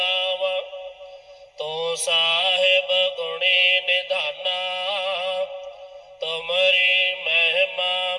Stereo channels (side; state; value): both; identical; correlation 1.00